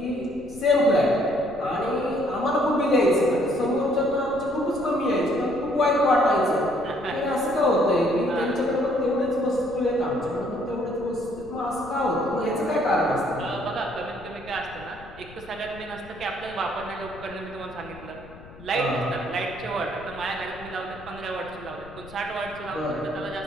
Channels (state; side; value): noise; left; rumble, 19 dB below the sound